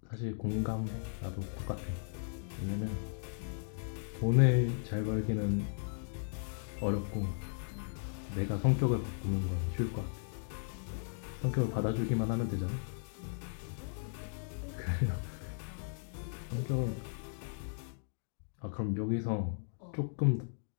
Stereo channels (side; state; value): right; silent; digital silence